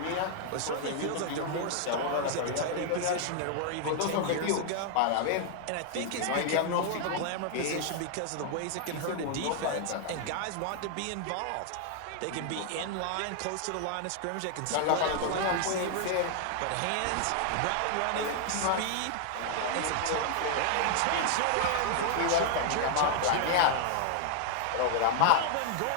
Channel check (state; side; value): different; both; correlation 0.00